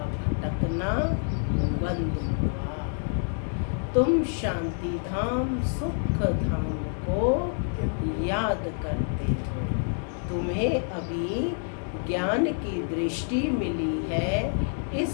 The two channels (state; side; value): silent; right; 60 dB below the other